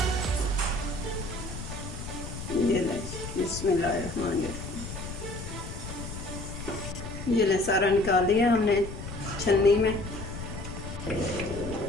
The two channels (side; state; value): left; noise; rumble, 9 dB below the sound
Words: ये ले, बिस्मिल्लाहिर्रहमानिर्रहीम। ये ले, सारा निकाल लिया हमने छन्नी में।